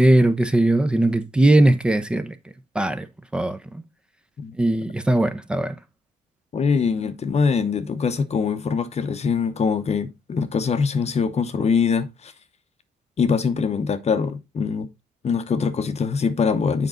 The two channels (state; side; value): normal; both; correlation 0.81